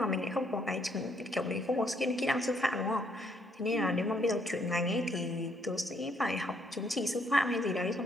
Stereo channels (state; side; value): normal; both; correlation 0.70